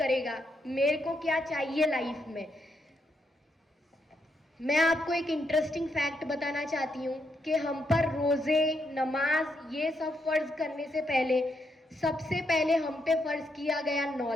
मेरे को क्या चाहिए लाइफ में। मैं आपको एक इंटरेस्टिंग फैक्ट बताना चाहती हूँ कि हम पर रोज़े, नमाज, ये सब फ़र्ज़ करने से पहले सबसे पहले हम पे फ़र्ज़ किया गया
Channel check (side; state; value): both; normal; correlation 0.79